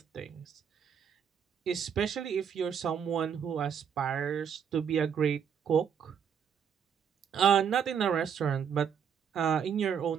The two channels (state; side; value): quieter; left; 7.7 dB